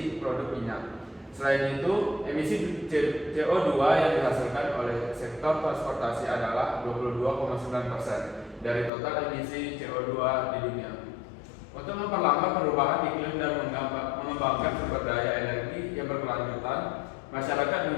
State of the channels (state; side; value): drops out; right; at 8.9 s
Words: produk minyak. Selain itu, emisi CO2 yang dihasilkan oleh sektor transportasi adalah 22,9% dari total emisi CO2 di dunia. Untuk memperlambat perubahan iklim dan mengembangkan sumber daya energi yang berkelanjutan, masyarakat